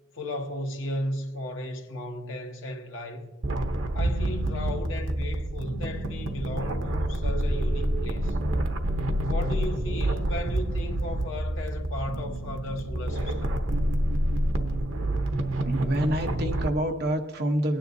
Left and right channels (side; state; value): both; normal; correlation 0.80